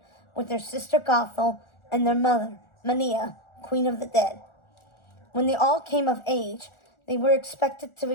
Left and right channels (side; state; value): right; late; 1.4 ms